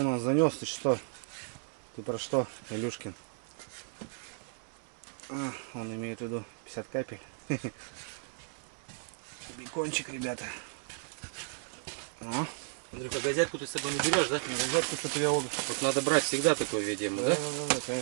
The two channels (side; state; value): left; silent; 55 dB below the other